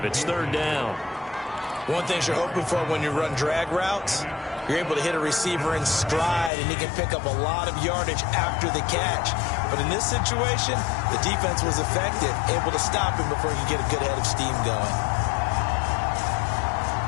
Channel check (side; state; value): right; drops out; at 6.5 s